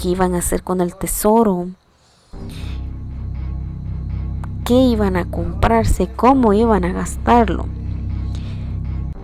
iban a hacer con el tesoro? ¿Qué iban a comprarse? ¿Cómo iban a gastarlo?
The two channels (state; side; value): identical; both; correlation 1.00